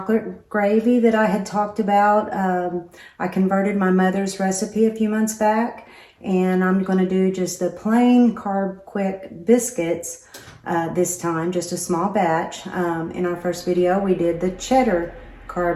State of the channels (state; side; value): identical; both; correlation 1.00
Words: gravy that I had talked about. I converted my mother's recipe a few months back, and I'm going to do just the plain carb quick biscuits this time, just a small batch. In our first video, we did the cheddar